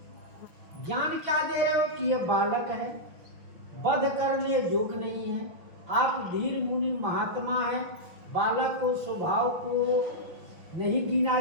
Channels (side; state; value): left; late; 5.9 ms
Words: ज्ञान क्या दे रहे हो कि ये बालक है, वध करने योग्य नहीं है, आप धीर मुनि महात्मा है, बालक को स्वभाव को नहीं गिना